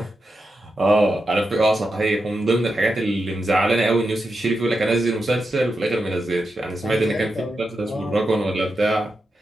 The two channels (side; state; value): both; normal; correlation 0.87